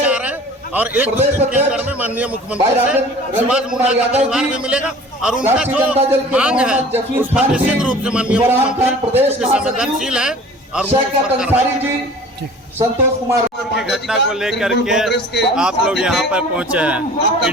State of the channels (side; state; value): both; normal; correlation 0.45